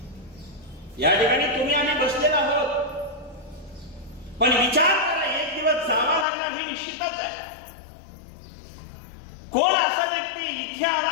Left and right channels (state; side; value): drops out; right; at 6.2 s